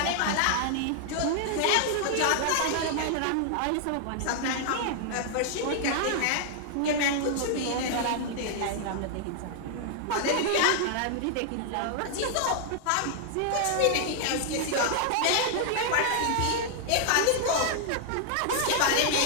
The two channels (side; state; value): both; different; correlation 0.00